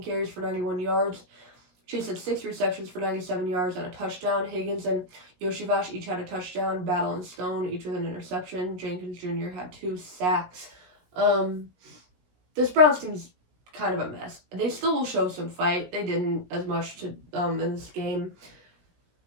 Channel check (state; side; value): late; left; 17 ms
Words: carries for 91 yards. Chase had 6 receptions for 97 yards and a touchdown. Higgins and Yoshivash each had a touchdown. Battle and Stone each with an interception. Jenkins Jr. had 2 sacks. This Browns team's kind of a mess. They still will show some fight. They didn't as much in this game.